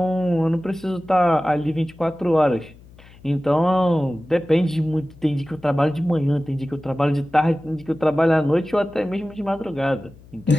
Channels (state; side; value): noise; left; hum, 23 dB below the sound